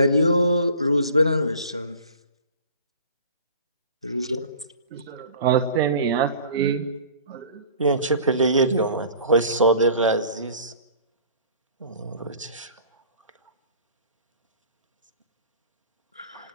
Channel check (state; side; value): inverted; both; correlation -0.45